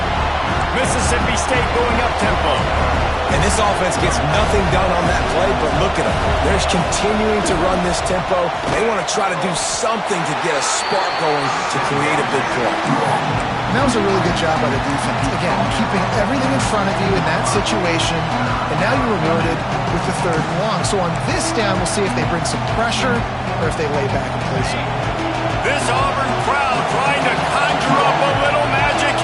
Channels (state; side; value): identical; both; correlation 1.00